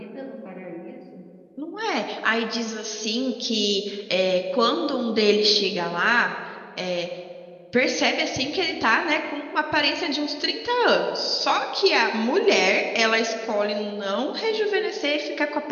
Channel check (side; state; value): both; identical; correlation 1.00